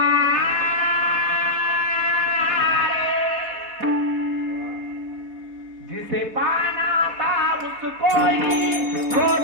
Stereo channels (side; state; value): left; late; 4.2 ms